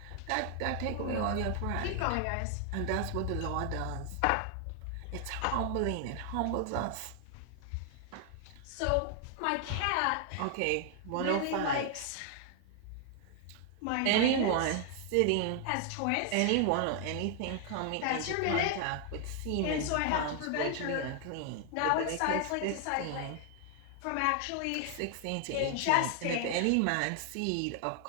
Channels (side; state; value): both; different; correlation 0.00